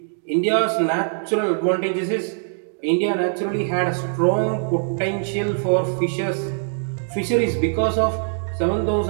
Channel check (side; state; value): left; silent; digital silence